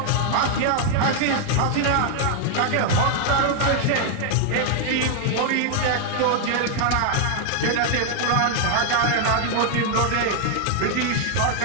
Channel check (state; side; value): different; both; correlation 0.00